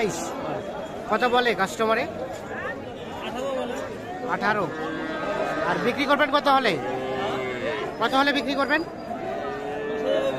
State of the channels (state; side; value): identical; both; correlation 1.00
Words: কত বলে কাস্টমারে? 18। আর বিক্রি করবেন কত হলে? কত হলে বিক্রি করবেন?